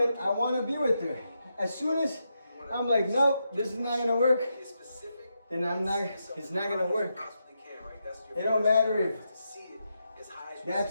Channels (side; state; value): both; inverted; correlation -0.84